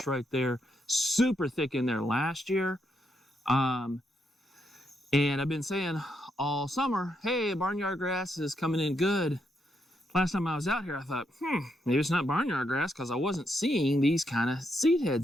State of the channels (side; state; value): both; normal; correlation 0.79